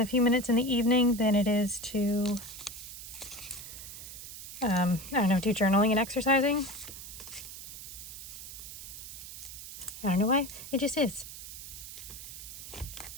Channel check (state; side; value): noise; right; hiss, 11 dB below the sound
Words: a few minutes in the evening than it is to, I don't know, do journaling and exercising. I don't know why, it just is.